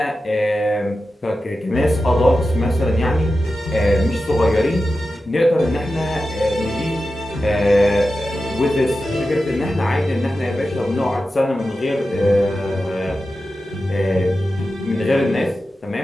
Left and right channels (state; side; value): normal; both; correlation 0.92